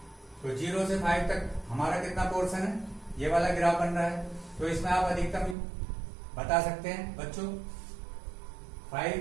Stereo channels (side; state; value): left; drops out; at 5.6 s